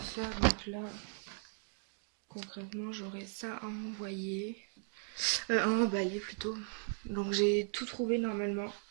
Donc là, concrètement, j'aurai ça à envoyer. À emballer plutôt. Donc j'ai tout trouvé normalement.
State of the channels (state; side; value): silent; left; 53 dB below the other